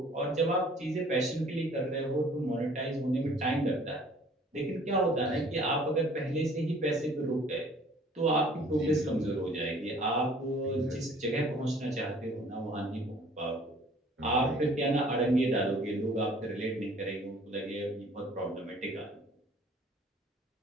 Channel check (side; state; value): both; normal; correlation 0.54